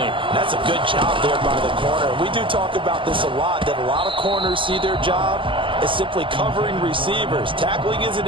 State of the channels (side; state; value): left; late; 0.25 ms